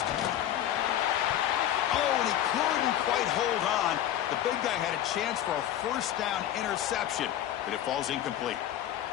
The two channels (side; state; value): right; quieter; 11.7 dB